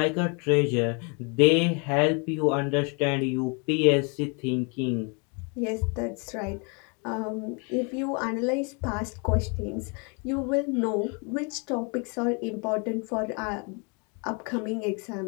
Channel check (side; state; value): right; quieter; 34.4 dB